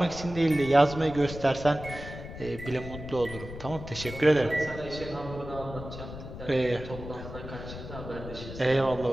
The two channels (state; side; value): noise; left; rumble, 11 dB below the sound